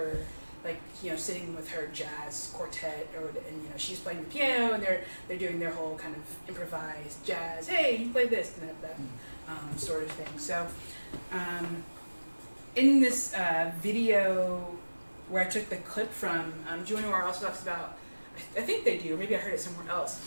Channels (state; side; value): inverted; both; correlation -1.00